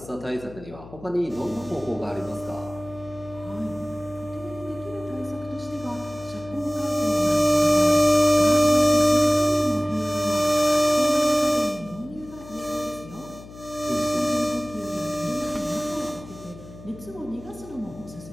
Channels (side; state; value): left; noise; hum, 17 dB below the sound